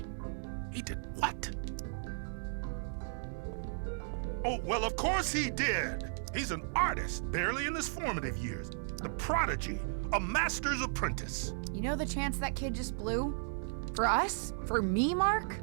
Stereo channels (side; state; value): left; silent; digital silence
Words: He did what? Oh, well, of course he did. He's an artist, barely in his formative years. The prodigy, a master's apprentice. You know the chance that kid just blew? For us? For me, Mark?